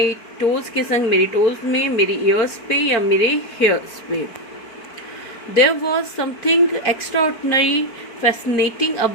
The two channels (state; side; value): late; right; 4.5 ms